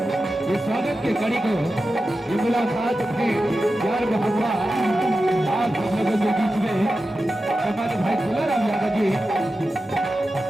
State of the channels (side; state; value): both; normal; correlation 0.92